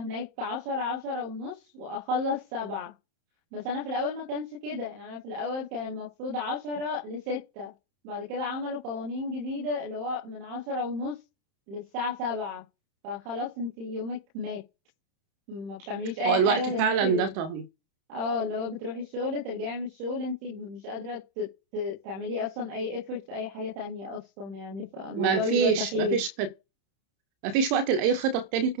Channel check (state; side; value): late; left; 31 ms